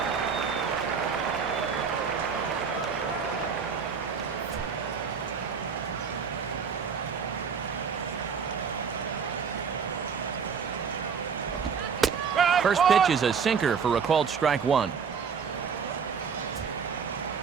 First pitch is a sinker for a called strike 1.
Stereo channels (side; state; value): left; quieter; 6.4 dB